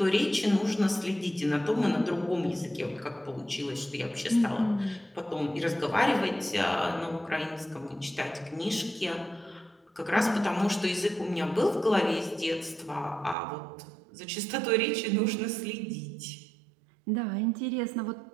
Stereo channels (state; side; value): drops out; left; at 13.4 s